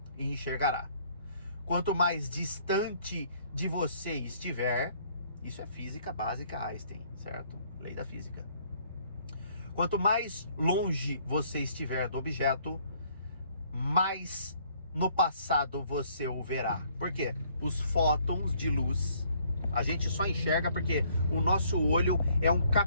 e enxergará. Quanto mais distante de você estiver, isso é física básica Einstein, certo? Lei da física. Quanto mais longe você estiver do objeto, mais no passado você o verá. Por quê? Os fótons de luz, a gente só enxerga porque o nosso olho é um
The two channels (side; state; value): both; inverted; correlation -0.63